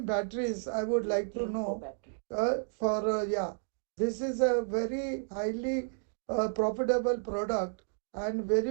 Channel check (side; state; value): left; silent; digital silence